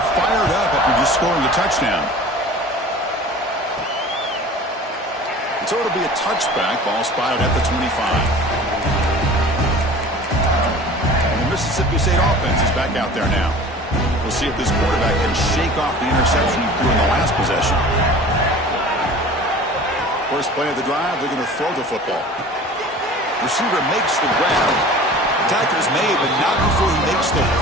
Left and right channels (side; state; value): both; normal; correlation 0.42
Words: fired up after just scoring a touchdown. And so it'll be a touchback. Ball spotted at the 25. And the Mississippi State offense is back out there now. We'll see if this quarterback can shake off the interception he threw in the last possession. First play of the drive, they're going to throw the football. Receiver makes the grab. Attacker's made, but not before he makes the